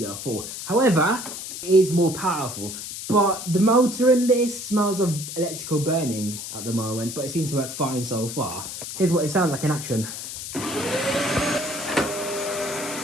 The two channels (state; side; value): noise; left; hiss, 8 dB below the sound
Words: However, it is more powerful. But the motor in this smells of electrical burning at the moment, but it seems to work fine so far. Here's what it sounds like in action.